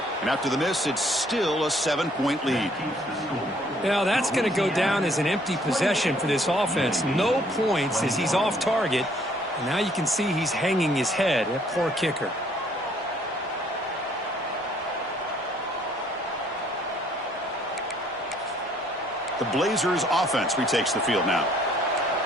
And after the miss, it's still a 7-point lead. Yeah, that's going to go down as an empty possession for this offense. No points as he's off target. And now you can see he's hanging his head. That poor kicker. The Blazers offense retakes the field now.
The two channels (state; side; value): normal; both; correlation 0.63